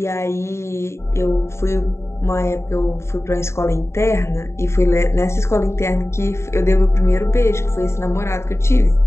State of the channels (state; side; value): late; right; 0.13 ms